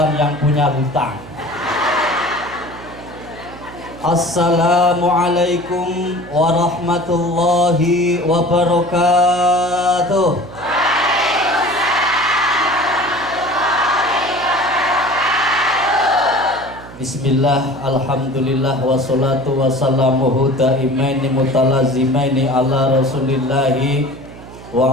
yang punya hutang. Assalamualaikum warahmatullahi wabarakatuh. Bismillah, alhamdulillah, wassalatu wassalamuhu daimaini mutalazimaini ala rasulillahi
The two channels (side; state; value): right; noise; hum, 17 dB below the sound